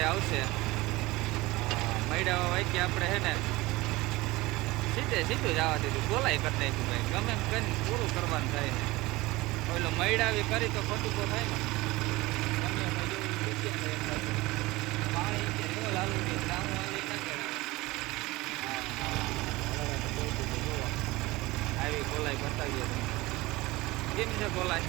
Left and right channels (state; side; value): quieter; left; 20.5 dB